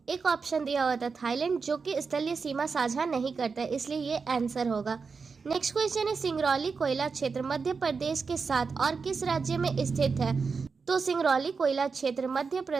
एक ऑप्शन दिया हुआ था थाईलैंड, जो कि स्थलीय सीमा साझा नहीं करता है, इसलिए ये आंसर होगा। नेक्स्ट क्वेश्चन है सिंगरौली कोयला क्षेत्र मध्य प्रदेश के साथ और किस राज्य में स्थित है? तो सिंगरौली कोयला क्षेत्र मध्य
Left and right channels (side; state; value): left; quieter; 5.0 dB